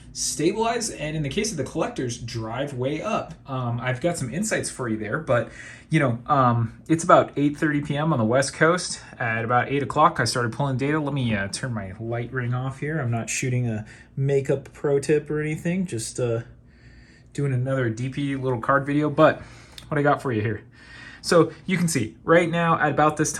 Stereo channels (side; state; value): both; identical; correlation 1.00